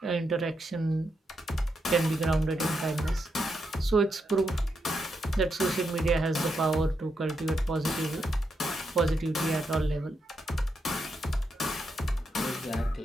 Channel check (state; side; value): normal; both; correlation 0.82